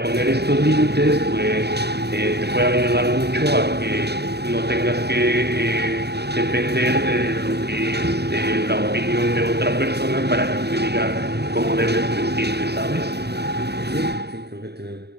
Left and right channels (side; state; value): left; late; 0.48 ms